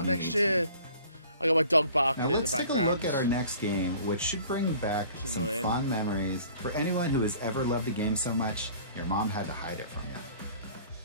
Next year. I got my dog barking Now in the let's take a background. look at our next game, which should bring back It's some annoying. fond memories for anyone who has ever loved a game so much your mom had to hide it from you.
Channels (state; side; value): inverted; both; correlation -0.50